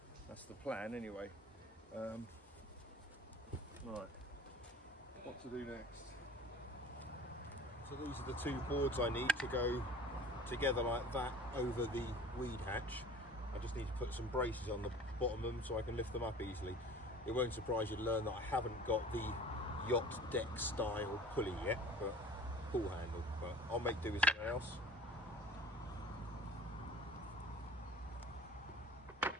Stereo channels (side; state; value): both; normal; correlation 0.44